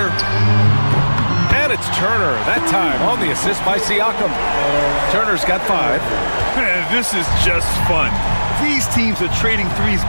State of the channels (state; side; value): inverted; both; correlation -1.00